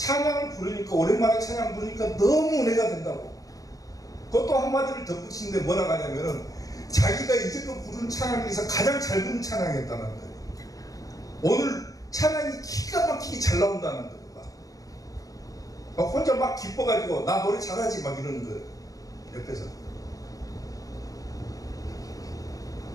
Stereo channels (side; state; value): right; late; 0.17 ms